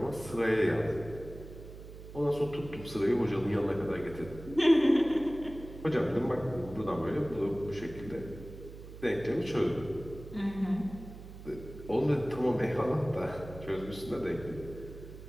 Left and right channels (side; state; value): right; noise; hum, 14 dB below the sound